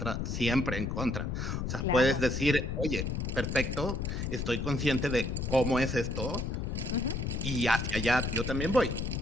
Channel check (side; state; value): left; noise; rumble, 2 dB below the sound